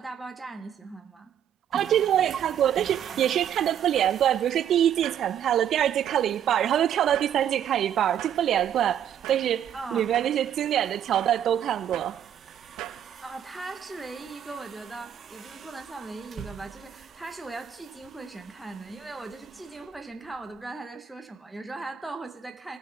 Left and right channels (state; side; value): quieter; left; 9.6 dB